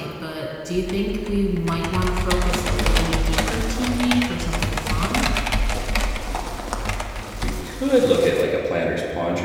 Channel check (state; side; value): identical; both; correlation 1.00